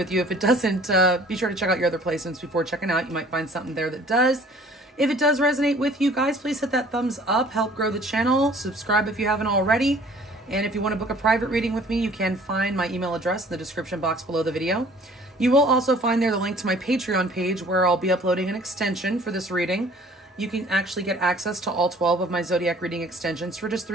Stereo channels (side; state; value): both; normal; correlation 0.53